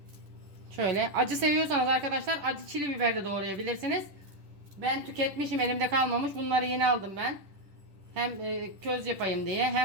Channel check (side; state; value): left; late; 10 ms